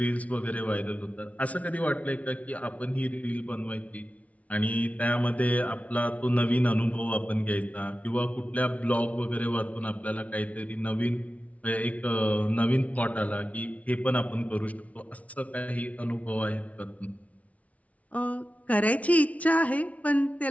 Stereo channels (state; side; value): late; right; 0.067 ms